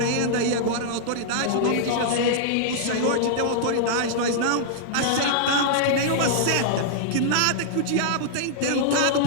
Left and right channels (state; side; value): different; both; correlation -0.02